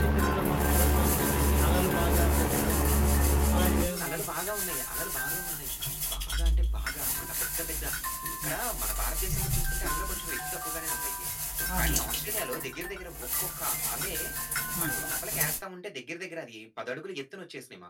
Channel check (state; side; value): identical; both; correlation 1.00